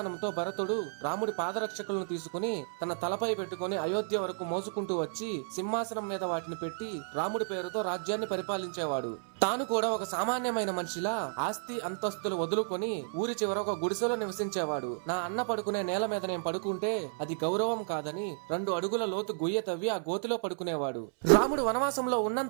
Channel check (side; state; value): left; silent; 56 dB below the other